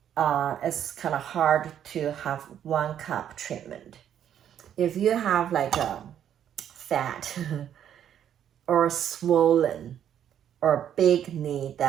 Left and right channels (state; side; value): quieter; left; 9.8 dB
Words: It's kind of hard to have one cup treatment. If you have like a fat or swollen or big knee